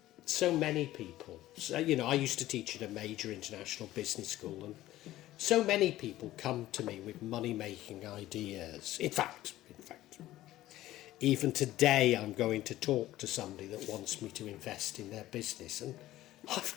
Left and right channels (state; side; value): quieter; right; 15.2 dB